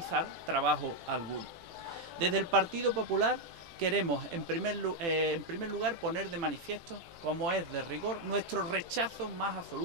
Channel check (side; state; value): left; late; 18 ms